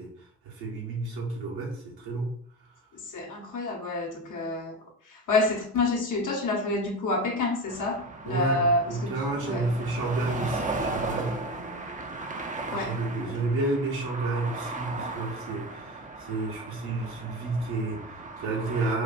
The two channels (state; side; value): normal; both; correlation 0.25